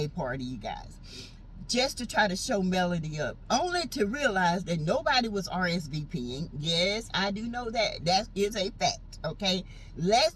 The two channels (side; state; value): both; identical; correlation 1.00